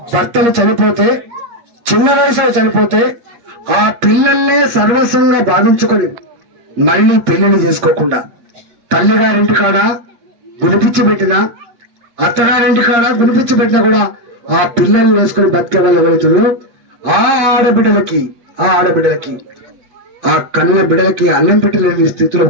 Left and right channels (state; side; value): late; left; 8.5 ms